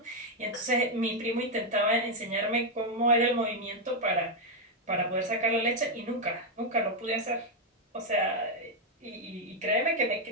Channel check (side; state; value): both; normal; correlation 0.01